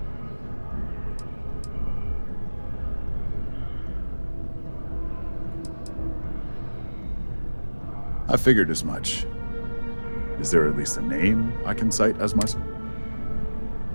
I figured as much. Is there at least a name I can cite as my...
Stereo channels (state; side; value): inverted; both; correlation -1.00